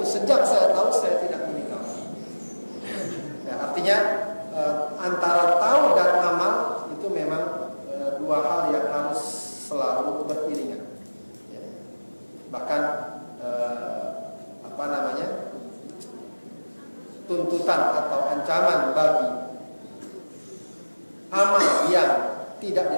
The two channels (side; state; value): both; inverted; correlation -1.00